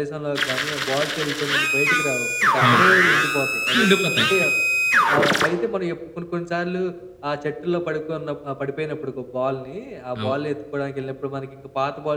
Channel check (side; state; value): both; identical; correlation 1.00